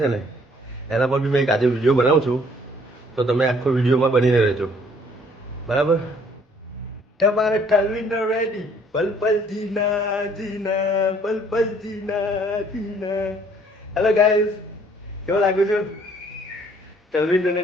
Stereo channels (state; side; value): normal; both; correlation 0.60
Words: છે ને એના પર બી મેં એક આજે વિડીયો બનાવું છું, તો તમે આખો વિડીયોમાં બનીને રહેજો બરાબર. તમારે તલવિંદર રેડી, પલ પલ જીના જીના, પલ પલ જીના જીના. હેલો ગાઈસ, કેવો લાગુ છું? તલવિંદરને